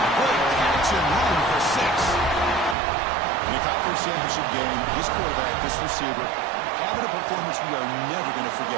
Great catch and run for 6. In the conference championship game, this quarterback, this receiver, having a performance we are never going to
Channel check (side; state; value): left; drops out; at 2.8 s